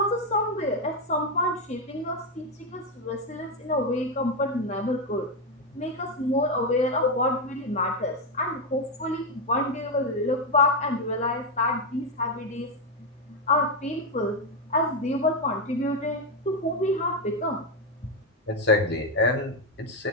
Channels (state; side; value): normal; both; correlation 0.06